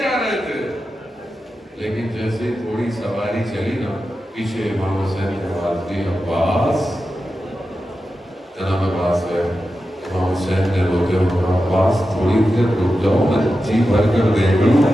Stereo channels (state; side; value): normal; both; correlation 0.91